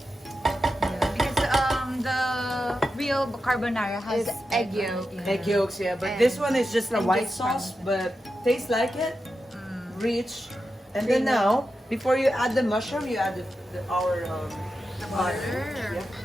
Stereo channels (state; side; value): normal; both; correlation 0.90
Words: Because the real carbonara has egg yolk. Egg yolks, yeah. But And- this one is just a and white just sauce, but tastes like it. Rich. And then now, before you add the mushroom, you add our butter. Butter. Yeah.